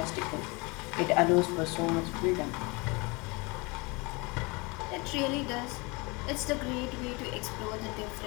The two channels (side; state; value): right; quieter; 27.0 dB